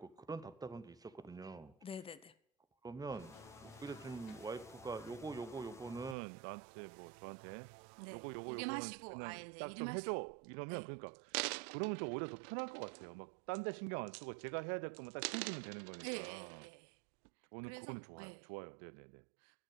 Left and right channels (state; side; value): drops out; left; at 6.2 s